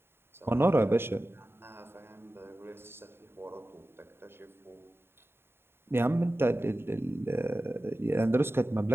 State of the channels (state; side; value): late; left; 0.11 ms